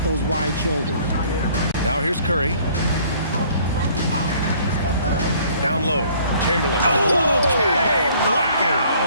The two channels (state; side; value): inverted; both; correlation -0.57